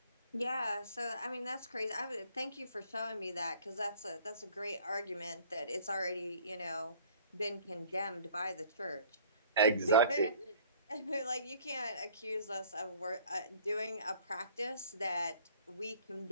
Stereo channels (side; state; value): both; inverted; correlation -0.54